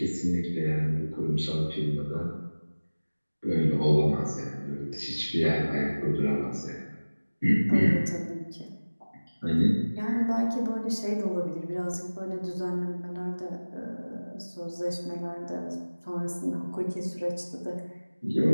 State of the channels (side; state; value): both; inverted; correlation -1.00